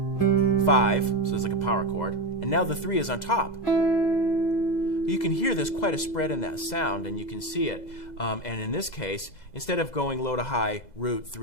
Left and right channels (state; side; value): late; right; 2.0 ms